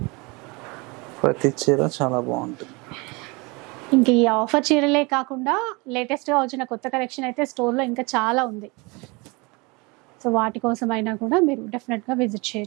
ప్రతి చీర చాలా బాగుంటుంది. ఇంక ఈ ఆఫర్ చీరలే కాకుండా లేటెస్ట్గా వచ్చిన కొత్త కలెక్షన్ అయితే స్టోర్లో ఇంకా చాలా ఉంది. సో వాటి కోసం అయినా కూడా మీరు డెఫినెట్గా విజిట్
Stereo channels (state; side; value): quieter; left; 27.1 dB